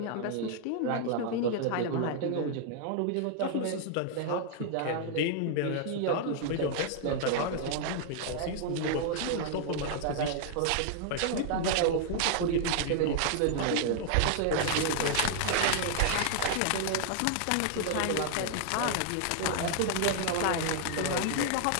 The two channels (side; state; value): both; different; correlation 0.00